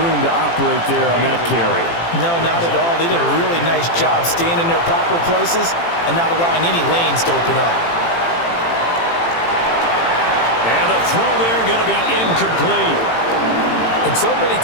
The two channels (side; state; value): right; late; 18 ms